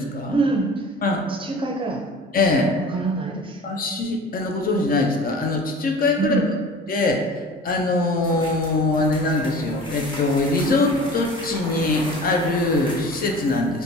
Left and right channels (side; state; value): both; normal; correlation 0.41